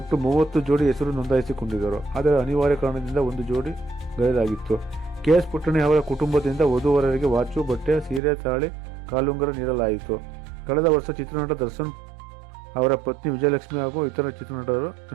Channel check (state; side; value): drops out; left; at 8.2 s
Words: 30 ಜೋಡಿ ಹೆಸರು ನೋಂದಾಯಿಸಿಕೊಂಡಿದ್ದರು. ಆದರೆ ಅನಿವಾರ್ಯ ಕಾರಣದಿಂದ ಒಂದು ಜೋಡಿ ಗೈರಾಗಿತ್ತು. KS ಪುಟ್ಟಣೆ ಅವರ ಕುಟುಂಬದಿಂದ ವಧುವರರಿಗೆ ವಾಚು, ಬಟ್ಟೆ, ಸೀರೆ, ತಾಳಿ, ಕಾಲುಂಗರ ನೀಡಲಾಯಿತು. ಕಳೆದ ವರ್ಷ ಚಿತ್ರನಟ ದರ್ಶನ್ ಅವರ ಪತ್ನಿ ವಿಜಯಲಕ್ಷ್ಮಿ ಹಾಗೂ ಇತರ ಚಿತ್ರನಟರು